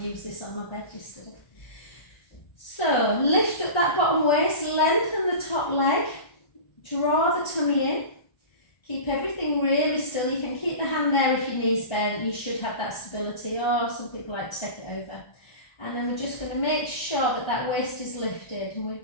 used this on my bed yesterday. So, lift up that bottom waist, lengthen the top leg, draw the tummy in. Keep everything really still. You can keep the hand there if your knees bent. You should have that stability, or some people like to take it over. And then we're just going to make sure that that waist is lifted. And we're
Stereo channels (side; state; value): right; late; 1.4 ms